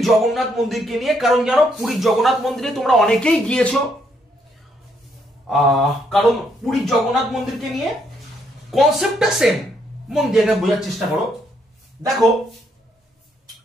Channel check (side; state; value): both; normal; correlation 0.73